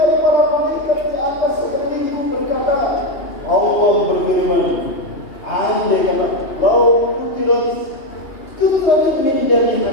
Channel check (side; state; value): right; late; 2.8 ms